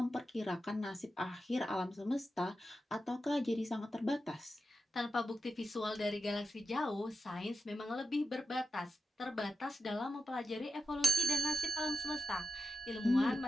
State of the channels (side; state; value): both; normal; correlation 0.90